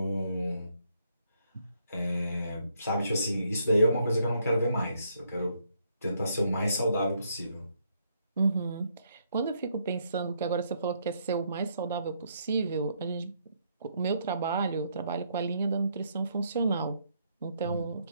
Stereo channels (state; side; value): inverted; both; correlation -0.73